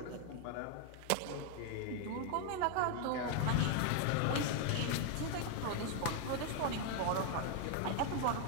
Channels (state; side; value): different; both; correlation 0.00